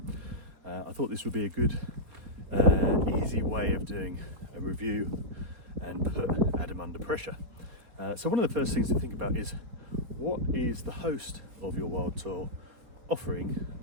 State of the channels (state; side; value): late; left; 4.4 ms